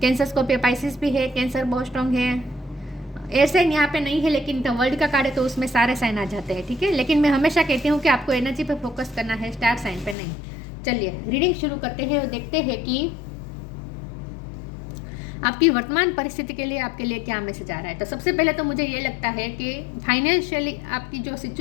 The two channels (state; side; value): drops out; right; at 10.2 s